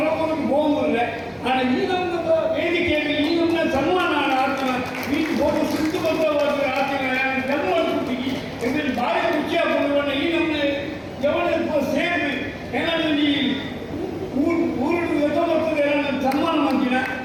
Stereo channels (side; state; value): both; identical; correlation 1.00